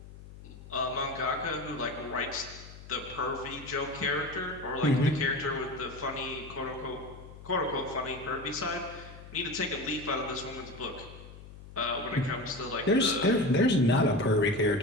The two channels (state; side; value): noise; left; hum, 16 dB below the sound